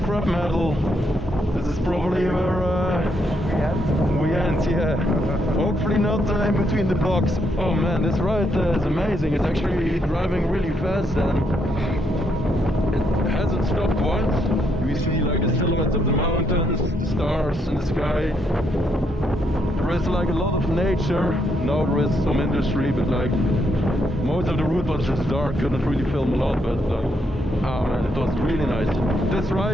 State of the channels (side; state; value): both; normal; correlation 0.76